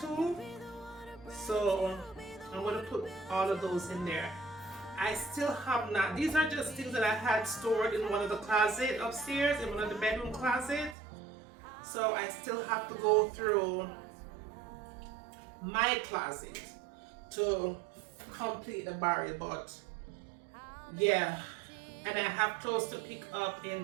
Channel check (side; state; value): left; drops out; at 11.0 s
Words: So I'm going to put all of those in there. I still have not, these are just things that I had stored in one of the closets upstairs, in one of the bedroom closets. So I still have to go through my closet to complete the barrel, but yeah. And I have clothes to pick up in